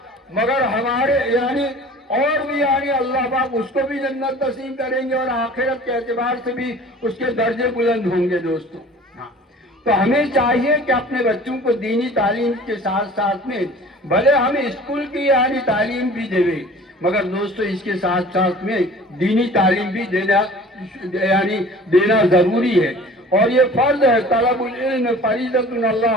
مگر ہمارے اور بھی اللہ پاک اس کو بھی جنت نصیب کریں گے، اور آخرت کے اعتبار سے بھی اس کے درجے بلند ہوں گے دوستو۔ تو ہمیں چاہیے کہ اپنے بچوں کو دینی تعلیم کے ساتھ ساتھ میں بھلے ہم اسکول کی تعلیم بھی دیں، مگر دوستو اس کے ساتھ ساتھ میں دینی تعلیم بھی دینا ضروری ہے، اور یہ فرض ہے۔ طلب العلم فریضۃ علی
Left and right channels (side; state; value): both; normal; correlation 0.45